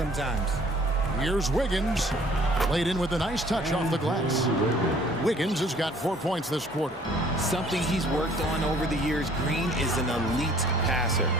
Here's Wiggins. Laid in with a nice touch off the glass. Wiggins has got 4 points this quarter. Something he's worked on over the years. Green is an elite passer.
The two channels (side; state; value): both; normal; correlation 0.56